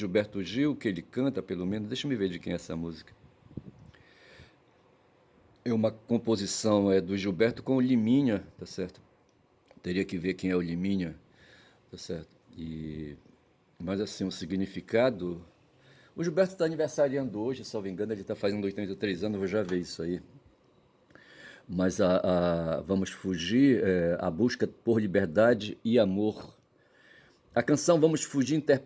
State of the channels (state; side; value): identical; both; correlation 1.00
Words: Gil, que ele canta, pelo menos, deixa eu me ver de quem é essa música. É uma composição do Gilberto com o Liminha, tá certo? Teria que ver quem é o Liminha, tá certo? Mas assim, o significado. O Gilberto está aniversariando hoje, se não me engano, ele está fazendo 83 anos, eu vou já ver isso aí. Mas Vamos Fugir, a busca por liberdade e amor. A canção Vamos Fugir,